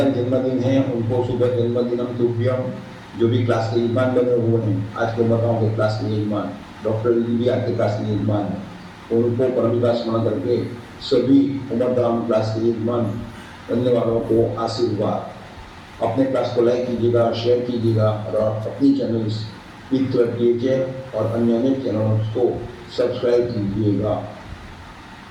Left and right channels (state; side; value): identical; both; correlation 1.00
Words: जन्मदिन है उनको सुबह जन्मदिनम तुभ्यम, जो भी क्लास के यजमान बने हुए हैं, आज के उमरगांव के क्लास के यजमान डॉक्टर जी भी आज के क्लास के यजमान है, उनको परम का स्मरण करके सभी उमरगांव क्लास के यजमान बनने वालों को आशीर्वाद। अपने क्लास को लाइक कीजिएगा, शेयर कीजिएगा और अपनी चैनल और अन्य अनेक चैनलों को सब्सक्राइब कीजिएगा।